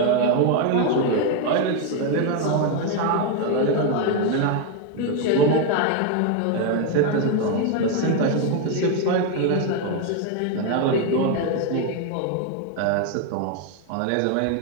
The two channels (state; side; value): different; both; correlation 0.01